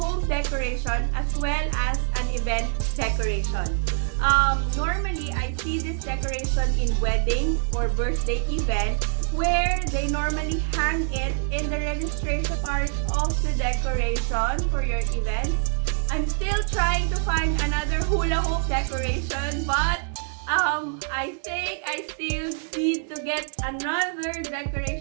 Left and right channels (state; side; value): silent; left; digital silence